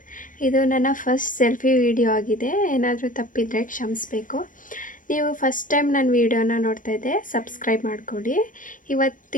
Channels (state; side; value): late; right; 0.38 ms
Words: ಇದು ನನ್ನ first selfie video ಆಗಿದೆ. ಏನಾದರೂ ತಪ್ಪಿದರೆ ಕ್ಷಮಿಸಬೇಕು. ನೀವು ಫಸ್ಟ್ ಟೈಮ್ ನನ್ನ ವಿಡಿಯೋನ ನೋಡ್ತಾ ಇದ್ದೆ, ಸಬ್ಸ್ಕ್ರೈಬ್ ಮಾಡ್ಕೊಳ್ಳಿ.